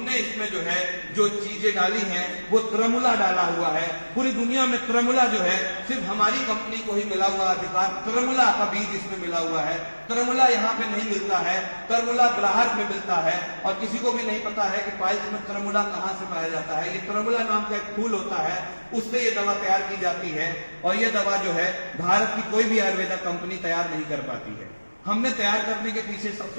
इसमें जो है जो चीजें डाली हैं वो त्रमुला डाला हुआ है। पूरी दुनिया में त्रमुला जो है सिर्फ हमारी कंपनी को ही मिला हुआ अधिकार, त्रमुला का बीज इसमें मिला हुआ है। त्रमुला यहाँ पे नहीं मिलता है, त्रमुला ग्राहक में मिलता है, और किसी को भी नहीं पता है कि पाइल्स में त्रमुला कहाँ से पाया जाता है। ये त्रमुला नाम का एक फूल होता है, उससे ये दवा तैयार की जाती है, और ये दवा जो है भारत की कोई भी आयुर्वेदा कंपनी तैयार नहीं कर पाती है। हमने तैयार करने के पीछे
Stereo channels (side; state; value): both; inverted; correlation -1.00